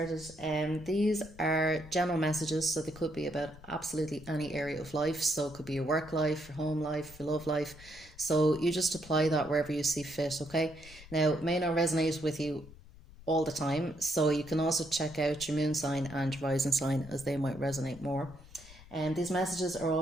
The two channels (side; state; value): left; noise; rumble, 20 dB below the sound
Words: These are general messages, so they could be about absolutely any area of life. So it could be your work life, your home life, your love life. So you just apply that wherever you see fit, okay? Now, it may not resonate with you all the time, so you can also check out your moon sign and your rising sign as they might resonate more. And these messages are